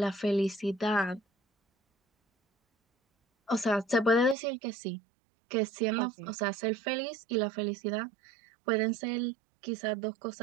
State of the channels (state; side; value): drops out; left; at 4.4 s